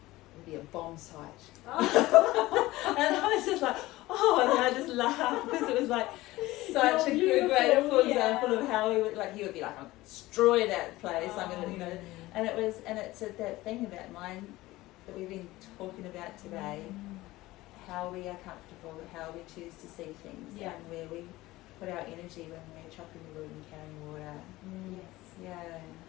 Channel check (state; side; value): quieter; right; 18.3 dB